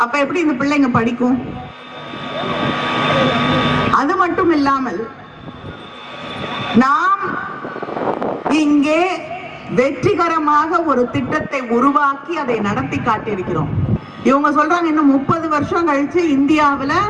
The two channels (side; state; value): both; identical; correlation 1.00